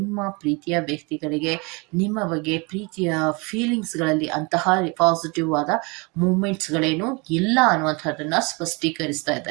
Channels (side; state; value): left; quieter; 28.7 dB